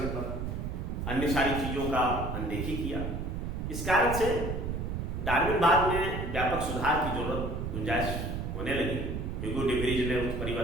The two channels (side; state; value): right; noise; rumble, 3 dB below the sound